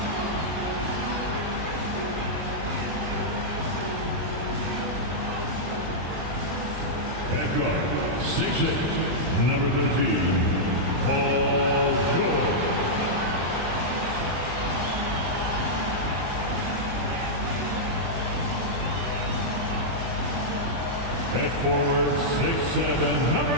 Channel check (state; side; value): late; left; 24 ms